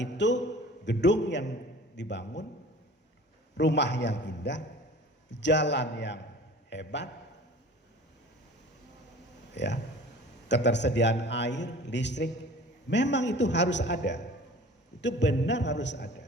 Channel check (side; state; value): both; normal; correlation 0.44